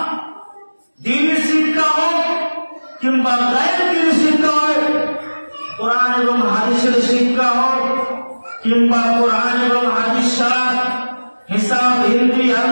দ্বীনি শিক্ষা হোক কিংবা গায়ের দ্বীনি শিক্ষা হোক, কোরআন এবং হাদিসের শিক্ষা হোক কিংবা কোরআন এবং হাদিস ছাড়া হিসাব, হিন্দি,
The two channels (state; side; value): inverted; both; correlation -1.00